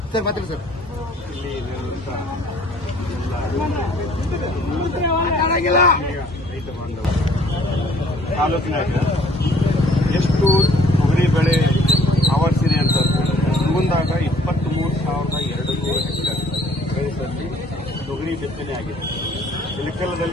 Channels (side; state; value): both; normal; correlation 0.58